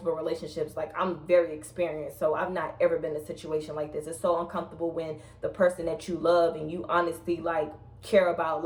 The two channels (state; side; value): identical; both; correlation 1.00